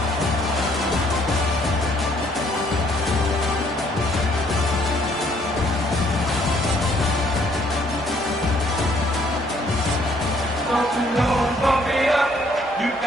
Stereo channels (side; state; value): both; normal; correlation 0.65